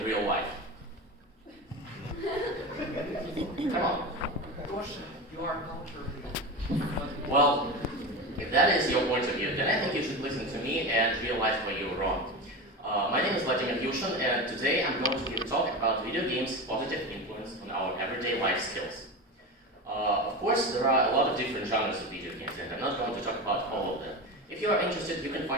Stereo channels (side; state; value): both; normal; correlation 0.24